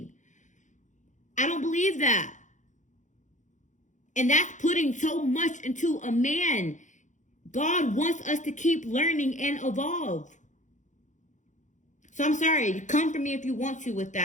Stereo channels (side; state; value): right; late; 0.36 ms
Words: I don't believe that. And that's putting so much into a man. God wants us to keep learning and evolve. So I'm sorry, come for me if you want to with